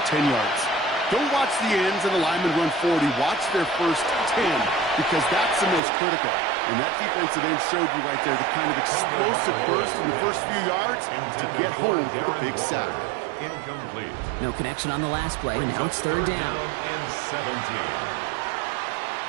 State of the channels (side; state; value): left; drops out; at 5.8 s